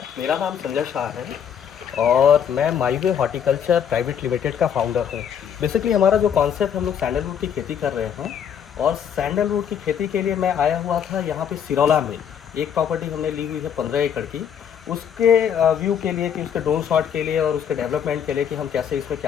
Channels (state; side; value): quieter; right; 8.3 dB